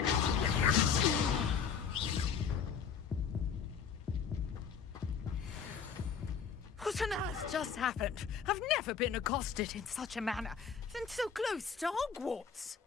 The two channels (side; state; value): right; quieter; 6.8 dB